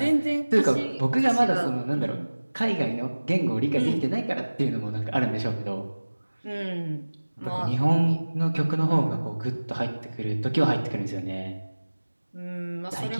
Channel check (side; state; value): both; inverted; correlation -1.00